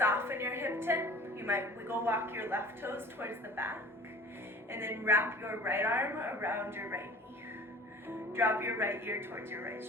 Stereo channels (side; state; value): both; normal; correlation 0.44